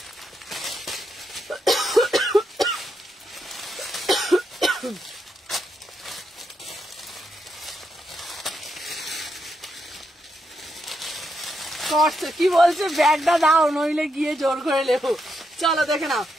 কটসেট কি বলছে, ব্যাগটা দাও নইলে গিয়ে জোর করে লেবো। চলো দেখে নাও,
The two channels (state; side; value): normal; both; correlation 0.82